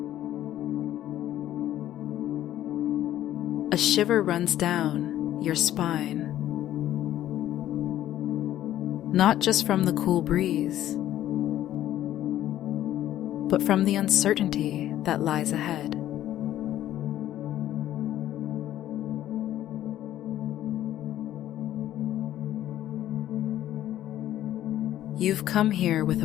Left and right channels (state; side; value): quieter; right; 12.7 dB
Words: A shiver runs down your spine, not just from the cool breeze, but from the uncertainty that lies ahead. You've come here with